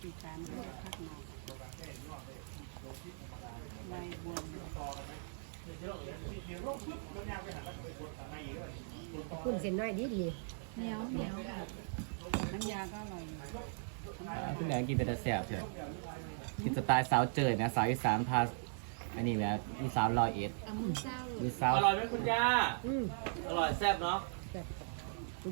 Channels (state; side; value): silent; left; 52 dB below the other